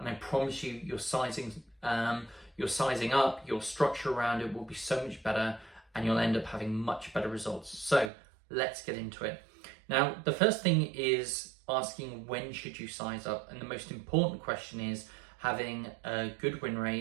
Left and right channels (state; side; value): drops out; left; at 8.1 s